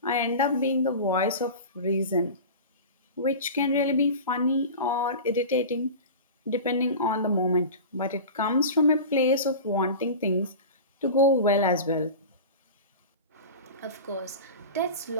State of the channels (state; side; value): inverted; both; correlation -0.32